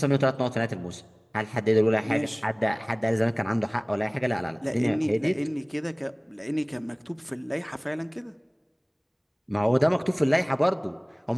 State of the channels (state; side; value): identical; both; correlation 1.00